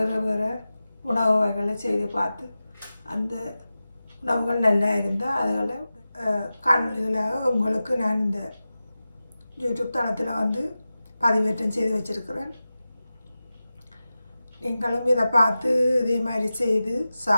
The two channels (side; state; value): both; inverted; correlation -0.94